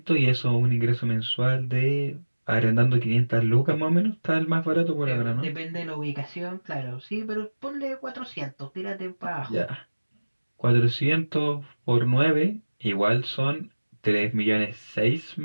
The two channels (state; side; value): inverted; both; correlation -1.00